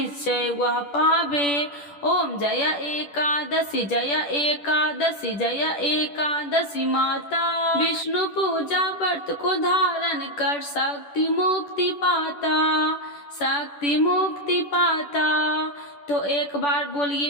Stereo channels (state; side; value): late; right; 10 ms